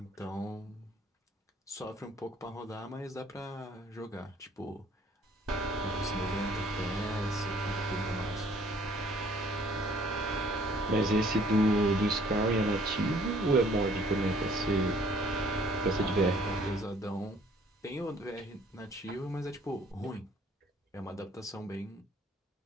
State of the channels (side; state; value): both; normal; correlation 0.58